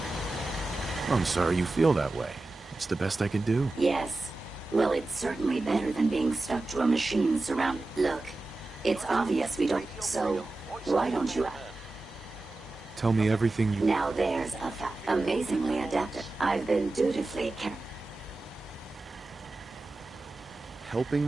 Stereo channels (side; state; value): left; quieter; 3.0 dB